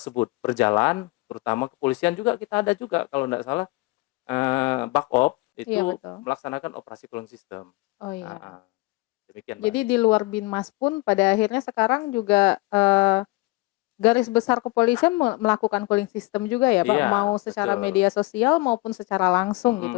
berjalan, terutama kepolisian juga kita ada juga kalau tidak salah, Bakop Iya itu betul. melaksanakan operasi cooling system. Oh iya. Heeh, demikian Mbak Jadi Anggi. di luar Binmas pun pada akhirnya sekarang juga, garis besar kepolisian melakukan cooling system juga ya, Pak? Iya, Mau secara betul. media sosial maupun secara langsung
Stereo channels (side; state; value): right; quieter; 23.1 dB